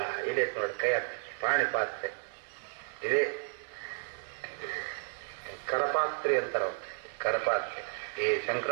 ಇದೆ ನೋಡಿ ಕೈ ಪಾಣಿ ಪಾತ್ರೆ ಇದೆ. ಕರಪಾತ್ರೆ ಅಂತಾರ, ಕರಪಾತ್ರೆ. ಈ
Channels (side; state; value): left; silent; 56 dB below the other